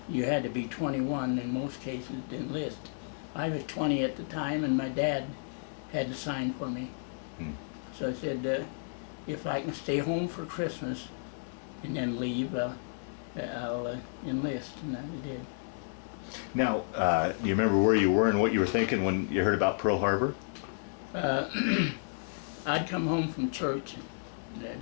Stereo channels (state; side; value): silent; right; 56 dB below the other